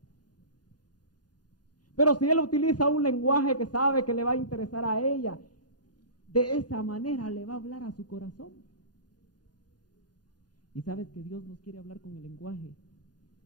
Pero si él utiliza un lenguaje que sabe que le va a interesar a ella, de esa manera le va a hablar a su corazón. Y sabes que Dios nos quiere hablar con el lenguaje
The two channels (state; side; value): late; right; 0.69 ms